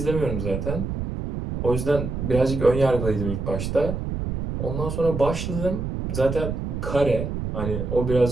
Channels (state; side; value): noise; right; rumble, 4 dB below the sound